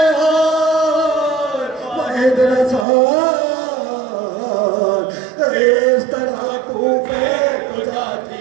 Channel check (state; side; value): drops out; left; at 2.9 s